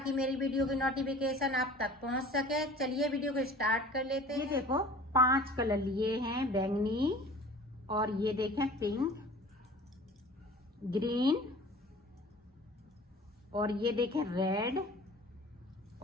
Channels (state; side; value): normal; both; correlation 0.45